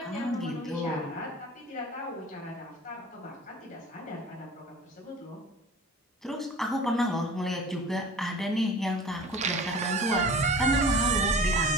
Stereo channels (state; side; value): normal; both; correlation 0.41